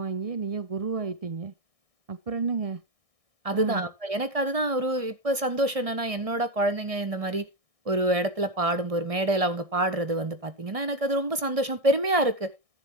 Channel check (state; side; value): late; left; 1.6 ms